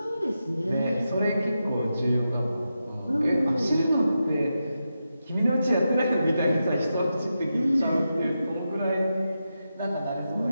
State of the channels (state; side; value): inverted; both; correlation -0.88